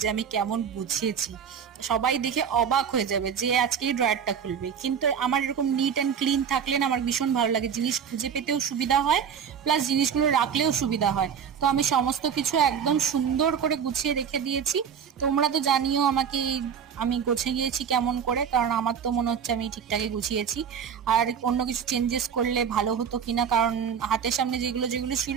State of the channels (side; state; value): left; quieter; 7.6 dB